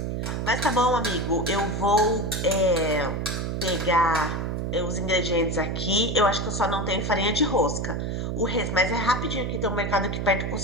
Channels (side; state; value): right; noise; hum, 2 dB below the sound